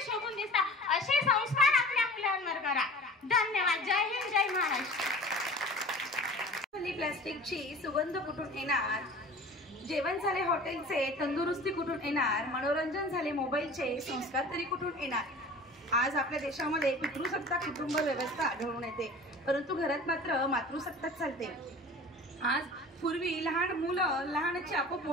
शोभून दिसतात. असे संस्कार आपल्या मुलांवर करा. धन्यवाद. जय हिंद, जय महाराष्ट्र. प्लास्टिकची सुगंध कुठून येणार, जेवण झाले हॉटेलचे, तंदुरुस्ती कुठून येणार, मनोरंजन झाले मोबाईलचे, संस्कार तरी कुठून येणार. आज आपल्या देशामध्ये पितृसत्ताक कुटुंब व्यवस्था आढळून येते, परंतु घरात मात्र मातृसत्ताक चालते. आज पूर्वी लहान मुलं लहानचे आपोआप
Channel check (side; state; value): both; normal; correlation 0.42